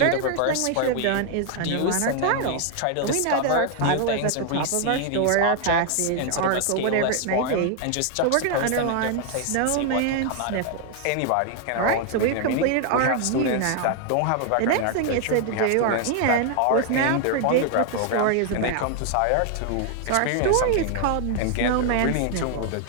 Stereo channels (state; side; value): different; both; correlation 0.00